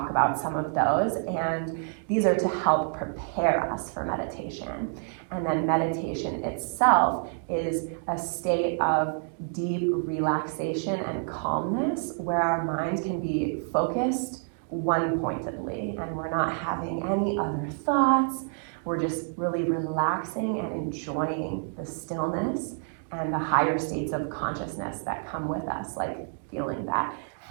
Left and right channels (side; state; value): left; silent; 59 dB below the other